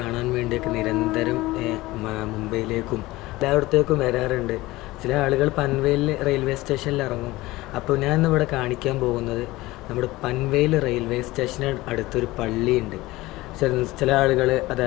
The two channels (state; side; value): quieter; right; 19.1 dB